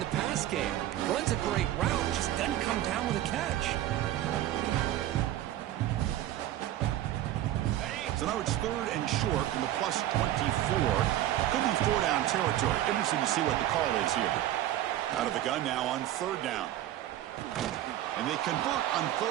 the pass game. Runs a great route, just doesn't come down with a catch. So now it's third and short from the plus 24. Could be four down territory. Interesting to see what the call is here. Out of the gun now on third down. And they convert on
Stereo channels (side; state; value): left; quieter; 13.3 dB